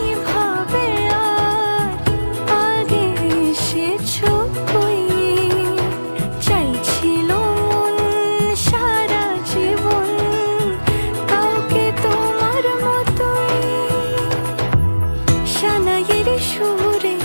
ভাবে আর আগে এসেছো কই, চাইছিল মন সারা জীবন কাউকে তোমার মতোই। সানাইয়ের সুরে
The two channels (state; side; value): inverted; both; correlation -1.00